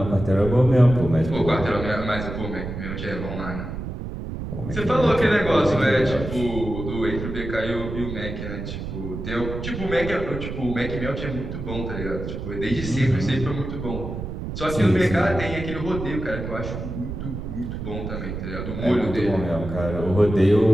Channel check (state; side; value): noise; right; rumble, 7 dB below the sound